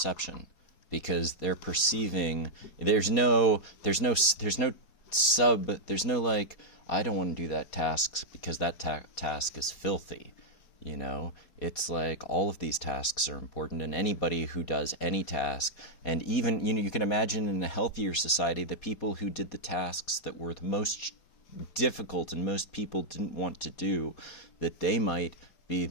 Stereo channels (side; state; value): right; late; 4.2 ms